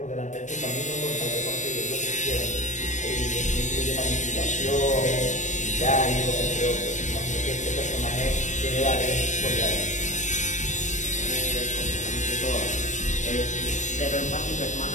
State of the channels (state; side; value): late; right; 0.35 ms